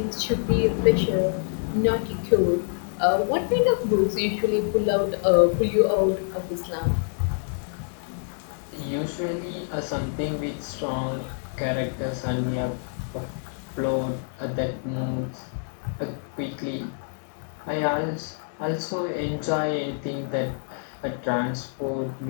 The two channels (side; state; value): right; silent; digital silence